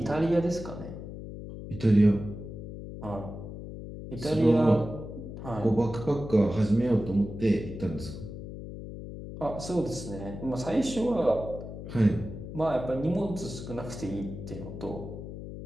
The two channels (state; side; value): noise; left; hum, 10 dB below the sound